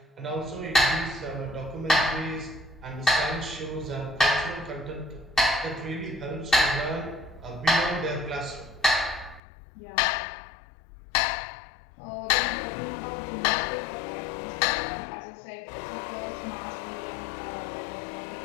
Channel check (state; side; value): drops out; right; at 9.4 s